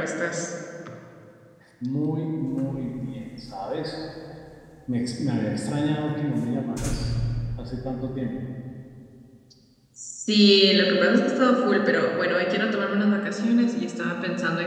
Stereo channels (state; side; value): identical; both; correlation 1.00